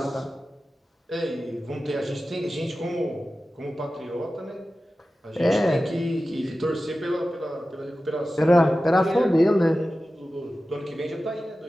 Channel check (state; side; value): normal; both; correlation 0.94